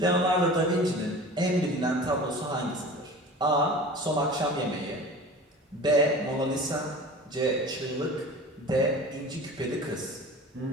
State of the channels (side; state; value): both; normal; correlation 0.38